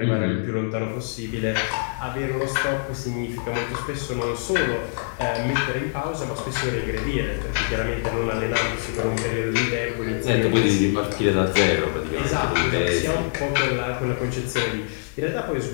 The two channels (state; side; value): silent; right; digital silence